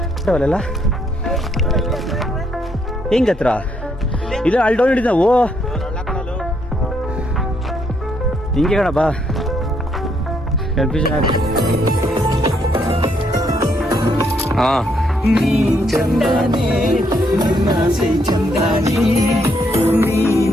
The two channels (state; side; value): normal; both; correlation 0.73